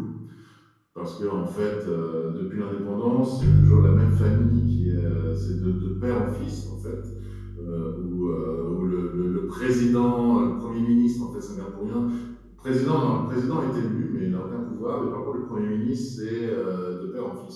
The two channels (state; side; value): identical; both; correlation 1.00